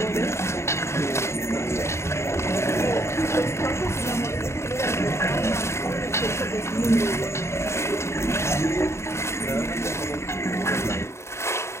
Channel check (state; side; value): late; right; 0.13 ms